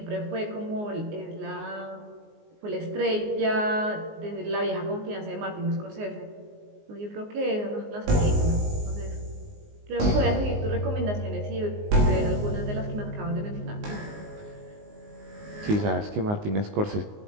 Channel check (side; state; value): left; late; 19 ms